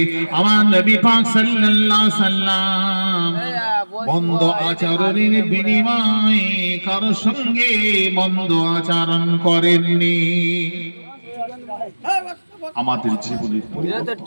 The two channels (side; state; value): both; inverted; correlation -1.00